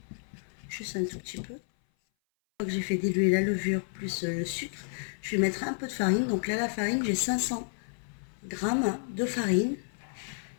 Juste un tout petit peu. Une fois que j'ai fait diluer la levure plus le sucre, je vais mettre un peu de farine. Donc là la farine, j'ai 500 grammes de farine.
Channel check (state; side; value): silent; right; 57 dB below the other